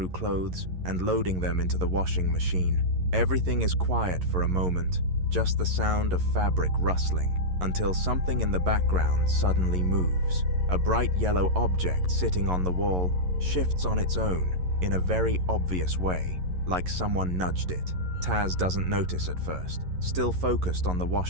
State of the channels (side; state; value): left; late; 11 ms